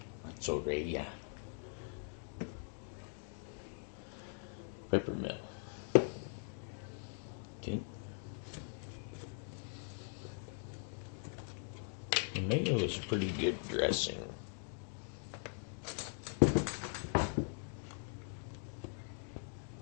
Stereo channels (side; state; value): right; silent; 50 dB below the other